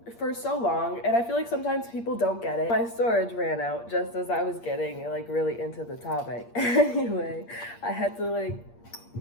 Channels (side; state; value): right; late; 8.6 ms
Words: for so long, and I feel like sometimes people don't get it. My storage ran out just as I was getting like really into the topic. Anyway, I had to like